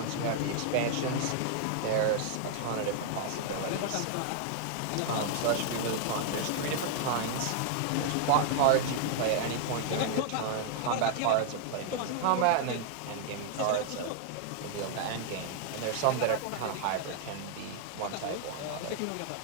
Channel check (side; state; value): both; different; correlation 0.00